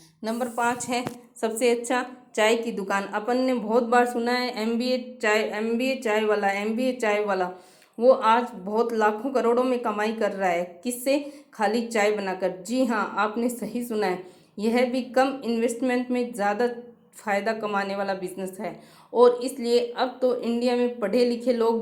नंबर 5 है सबसे अच्छा चाय की दुकान। अपन ने बहुत बार सुना है एमबीए चाय वाला, वो आज बहुत लाखों करोड़ों में कमाई कर रहा है। किससे? खाली चाय बनाकर। जी हाँ, आपने सही सुना है। यह भी कम इन्वेस्टमेंट में ज़्यादा फ़ायदा कमाने वाला बिजनेस है और इसलिए अब तो इंडिया में पढ़े लिखे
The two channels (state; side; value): identical; both; correlation 1.00